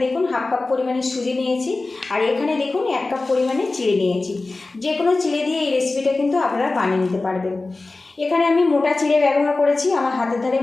দেখুন 1/2 কাপ পরিমাণে সুজি নিয়েছি, আর এখানে দেখুন 1 কাপ পরিমাণে চিড়ে নিয়েছি। যে কোনো চিড়ে দিয়ে এই রেসিপিটা কিন্তু আপনারা বানিয়ে নিতে পারবেন। এখানে আমি মোটা চিড়ে ব্যবহার করেছি, আমার হাতের ধারে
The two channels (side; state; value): right; quieter; 3.3 dB